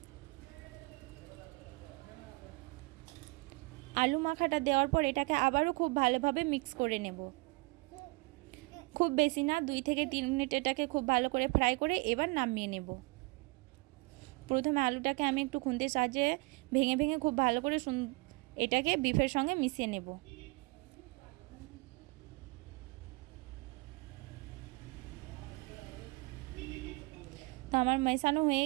আলু মাখাটা দেওয়ার পর এটাকে আবারও খুব ভালোভাবে মিক্স করে নেব। খুব বেশি না, 2-3 মিনিট এটাকে খুব ভালো করে ফ্রাই করে এবার নামিয়ে নেব। প্রথমে আলুটাকে আমি একটু খুন্তির সাহায্যে ভেঙে ভেঙে খুব ভালো করে এটাকে বিফের সঙ্গে মিশিয়ে নেব। তো আমার মেশানো হয়ে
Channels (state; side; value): quieter; left; 26.7 dB